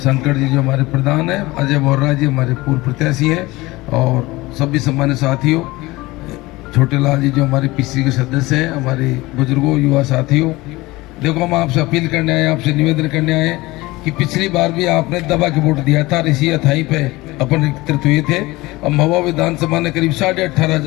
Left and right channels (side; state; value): right; quieter; 20.6 dB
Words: जी जो हमारे प्रधान हैं, अजय बोर्रा जी हमारे पूर्व प्रत्याशी हैं, और सभी सम्मान्य साथियों, छोटे लाल जी जो हमारे पीसी के सदस्य हैं, हमारे बुजुर्गों, युवा साथियों, देखो हम आपसे अपील करने आए, आपसे निवेदन करने आए कि पिछली बार भी आपने दबा के वोट दिया था, इसी अथाई पे अपन एकत्रित हुए थे। अब महुआ विधानसभा ने करीब